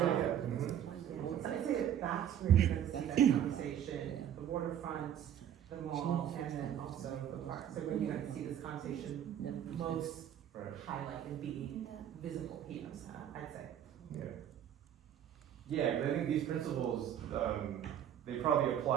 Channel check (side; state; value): left; quieter; 10.1 dB